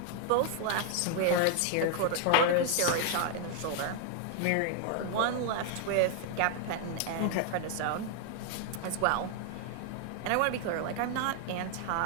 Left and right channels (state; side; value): different; both; correlation 0.00